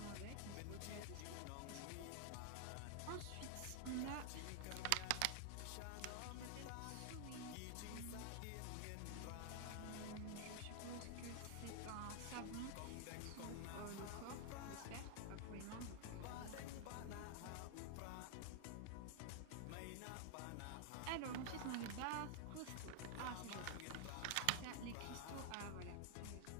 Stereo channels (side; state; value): both; different; correlation 0.00